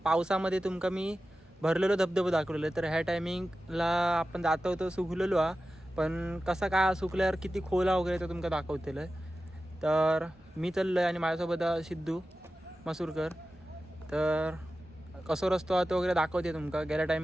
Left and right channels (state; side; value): normal; both; correlation 0.94